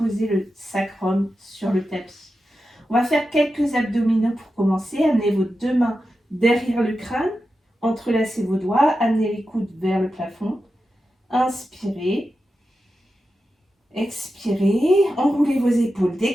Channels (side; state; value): both; normal; correlation 0.91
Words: le sacrum sur le tapis. On va faire quelques abdominaux pour commencer. Amenez vos deux mains derrière le crâne, entrelacez vos doigts, amenez les coudes vers le plafond. Inspirez. Expirez, enroulez vos épaules,